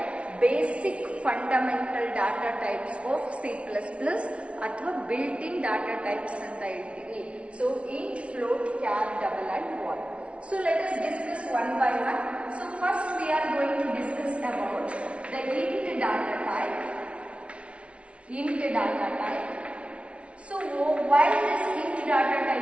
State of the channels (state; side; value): late; left; 0.061 ms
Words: basic fundamental data types of C++ ಅಥವಾ built-in data types ಅಂತ ಹೇಳ್ತೀವಿ. So int, float, char, double and void. So let us discuss one by one. So first we are going to discuss about the int data type. So why this int data